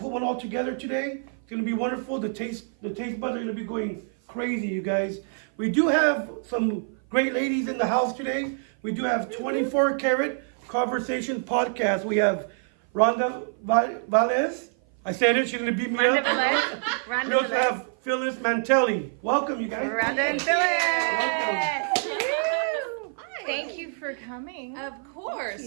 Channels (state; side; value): silent; left; 55 dB below the other